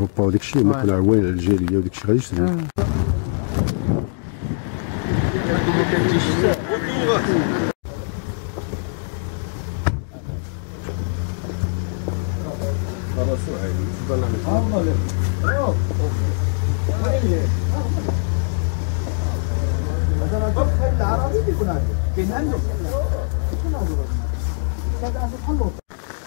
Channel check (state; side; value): silent; right; digital silence